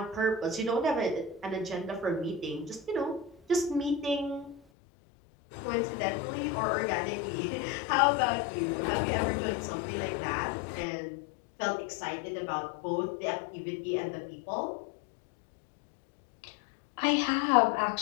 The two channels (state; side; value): drops out; right; at 4.6 s